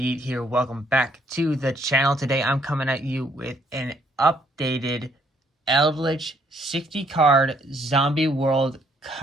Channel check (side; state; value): both; normal; correlation 0.67